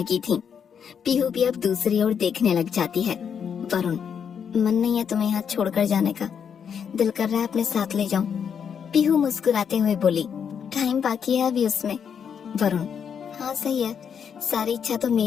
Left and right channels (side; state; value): right; quieter; 7.4 dB